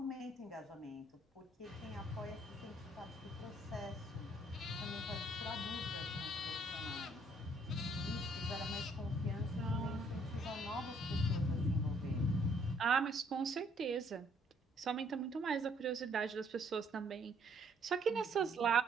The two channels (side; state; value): both; normal; correlation 0.65